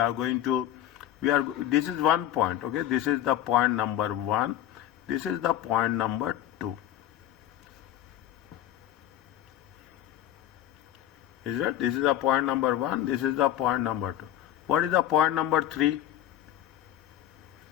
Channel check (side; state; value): right; quieter; 12.1 dB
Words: going to. This is one point, okay? This is the point number 1. This is the point number 2. Is it? This is the point number 1. This is the point number 2. What is the point number 3?